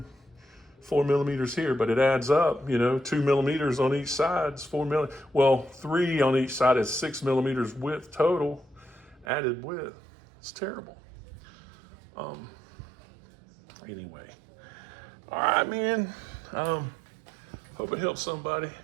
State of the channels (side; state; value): left; drops out; at 9.2 s